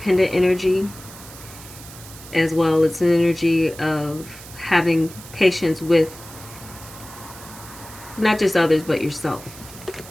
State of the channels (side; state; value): right; noise; hiss, 17 dB below the sound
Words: energy as well. It's an energy of having patience with not just others but yourself.